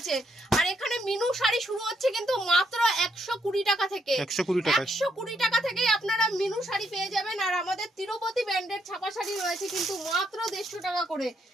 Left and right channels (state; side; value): normal; both; correlation 0.76